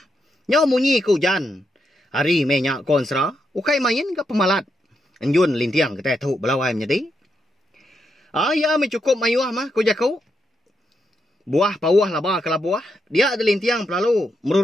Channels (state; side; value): normal; both; correlation 0.82